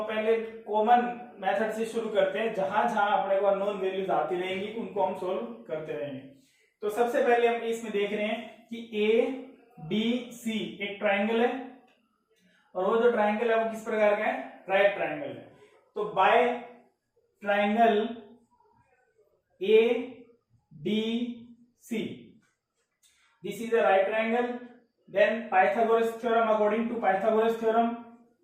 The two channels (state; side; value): identical; both; correlation 1.00